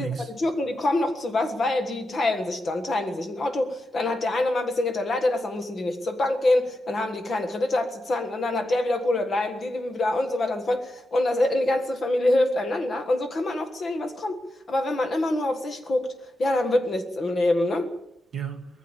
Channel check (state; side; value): normal; both; correlation 0.88